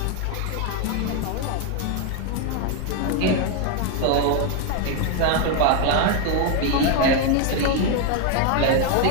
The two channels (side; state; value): both; different; correlation 0.01